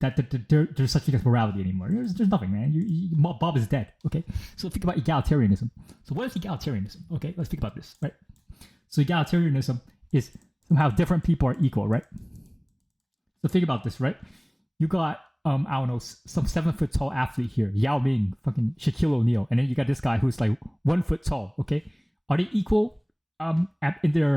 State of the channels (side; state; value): both; identical; correlation 1.00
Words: there's such thing as morality anymore. There's nothing, man. Bob is dead. Okay, so think about egalitarianism. So what is egalitarianism? Okay, let's think about this, right? So egalitarianism is somehow different people are equal, right? So think about this, right? You got I don't know, some 7 foot tall athlete here, Yao Ming, fucking Shaquille O'Neal, and then you got this guy who's like 1 foot tall. Okay, are they equal in